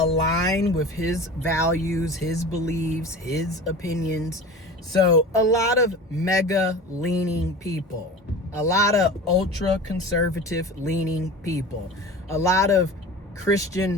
with his values, his beliefs, his opinions. So a lot of mega leaning people, a lot of ultra conservative leaning people, a lot of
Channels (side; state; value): both; normal; correlation 0.36